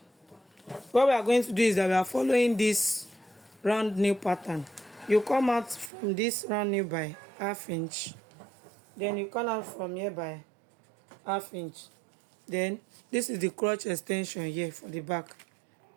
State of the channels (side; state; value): left; drops out; at 5.9 s